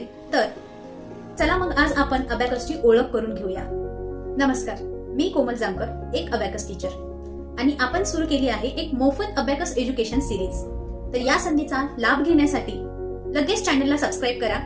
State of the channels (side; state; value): both; identical; correlation 1.00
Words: तर चला मग आज आपण अबॅकसची ओळख करून घेऊया. नमस्कार, मी कोमल जामकर, एक अबॅकस टीचर आणि आपण सुरू केली आहे एक मोफत अबॅकस एज्युकेशन सिरीज. तर या संधीचा लाभ घेण्यासाठी लगेच चॅनलला सबस्क्राईब करा